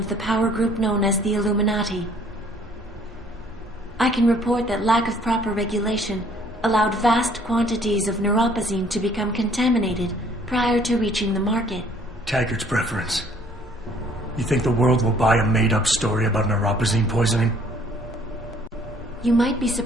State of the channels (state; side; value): normal; both; correlation 0.59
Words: the power group known as the Illuminati. I can report that lack of proper regulation allowed vast quantities of neuropozyne to become contaminated prior to reaching the market. Taggart's preference. You think the world will buy a made-up story about neuropozyne poisoning? You might be